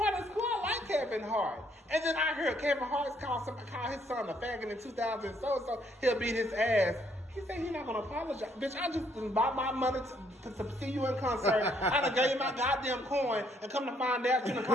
is cool. I like Kevin Hart. And then I heard Kevin Hart's call his son a faggot in 2000 so he'll beat his ass. He said he's not going to apologize. Bitch, I just bought my money to see you in concert. I done gave you my goddamn coin and come to find out you done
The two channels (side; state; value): both; normal; correlation 0.68